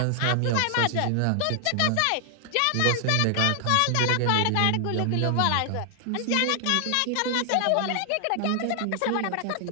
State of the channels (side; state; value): both; different; correlation 0.00